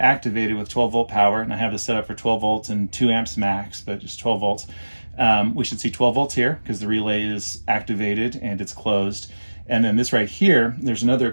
with 12 volt power, and I have this set up for 12 volts and 2 amps max, but just 12 volts, we should see 12 volts here because the relay is activated and it's closed. And then this right here, there's another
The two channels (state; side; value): inverted; both; correlation -1.00